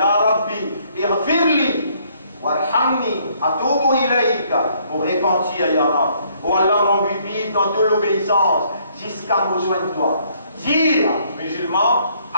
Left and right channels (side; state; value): both; inverted; correlation -0.66